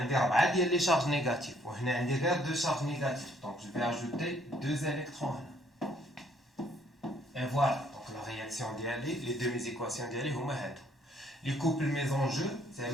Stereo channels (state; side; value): normal; both; correlation 0.64